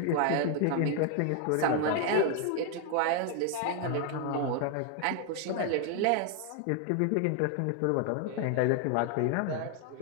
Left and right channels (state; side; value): different; both; correlation 0.00